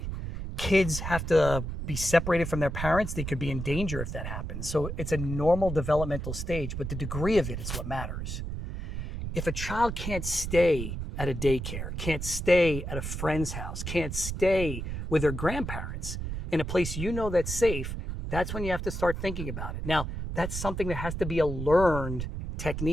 Kids have to be separated from their parents. They could be in danger if that happens. So it's a normal developmental stage, but the degree of it is what matters. If a child can't stay at a daycare, can't stay at a friend's house, can't stay with their grandparents in a place you know that's safe, that's when you have to start thinking about it. Now, that's something that has to be a learned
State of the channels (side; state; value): right; noise; rumble, 5 dB below the sound